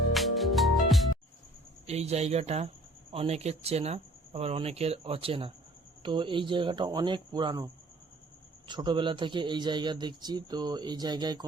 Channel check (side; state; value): both; normal; correlation 0.54